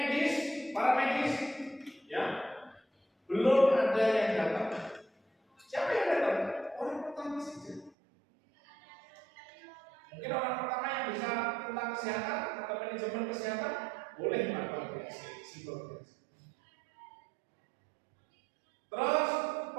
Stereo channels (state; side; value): drops out; left; at 7.9 s